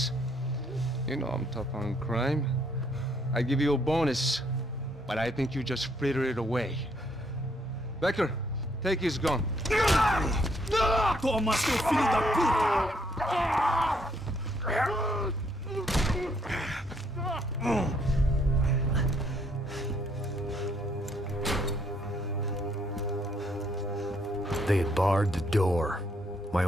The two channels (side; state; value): both; normal; correlation 0.70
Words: You know I'm tough on crime. I give you a bonus, but I think you just fritter it away. Becker, take his gun. Toma, seu filho da puta! They had barred the door. My